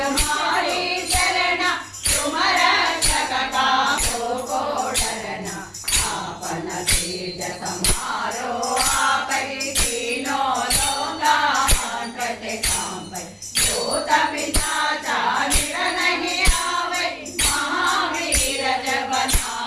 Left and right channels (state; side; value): identical; both; correlation 1.00